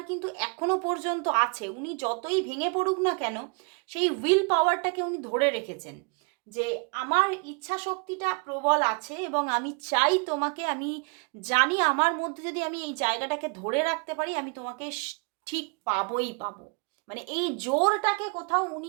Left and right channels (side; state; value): left; quieter; 34.9 dB